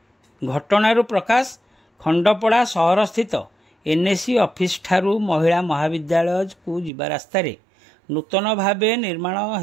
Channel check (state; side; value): drops out; left; at 6.9 s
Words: घटनारू प्रकाश खंडपड़ा सहर स्थित एनएसी ऑफिस ठारू महिला महाविद्यालय को जिबा रास्तारे नूतन भावे निर्माण